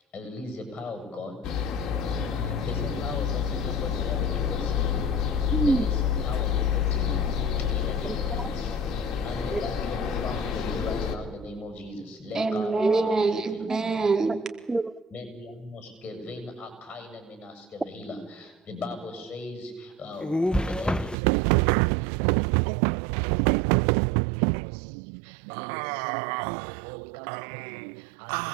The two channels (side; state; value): left; drops out; at 21.2 s